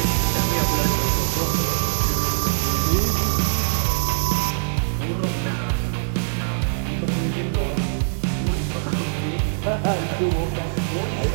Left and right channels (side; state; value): left; silent; 61 dB below the other